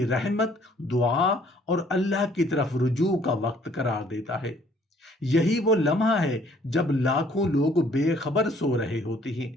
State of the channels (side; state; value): both; normal; correlation 0.60